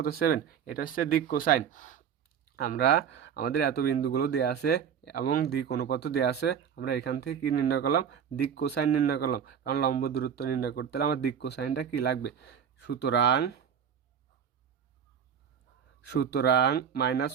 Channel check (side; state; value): left; quieter; 7.8 dB